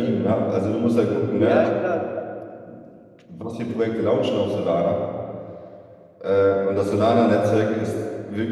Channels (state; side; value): identical; both; correlation 1.00